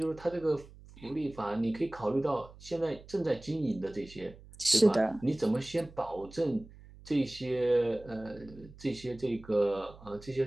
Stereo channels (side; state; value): right; noise; hum, 20 dB below the sound